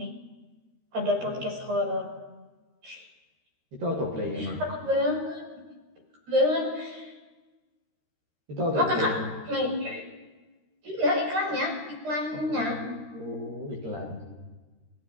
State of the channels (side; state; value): left; late; 13 ms